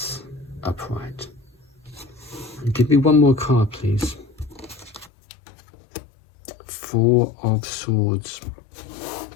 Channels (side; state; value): right; drops out; at 5.1 s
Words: upright. And give me one more card, please. Four of Swords.